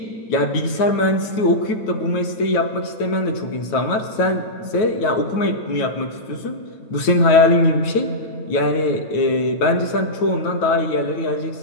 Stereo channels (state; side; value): late; right; 9.3 ms